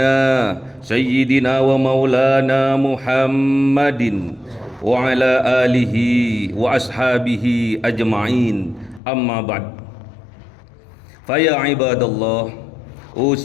sayyidina wa maulana Muhammadin wa ala alihi wa ashabihi ajma'in, amma ba'd. Faya ibadallah,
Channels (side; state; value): right; drops out; at 9.0 s